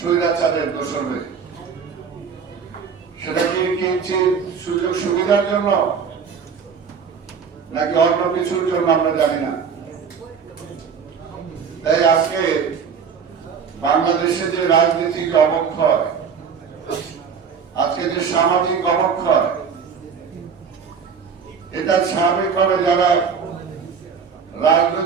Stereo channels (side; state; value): left; quieter; 6.4 dB